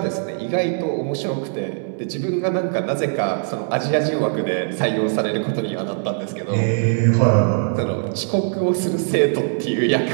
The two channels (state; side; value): silent; left; digital silence